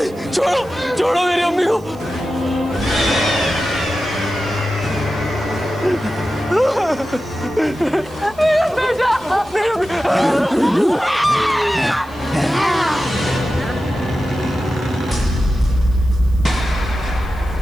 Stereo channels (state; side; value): noise; right; hiss, 26 dB below the sound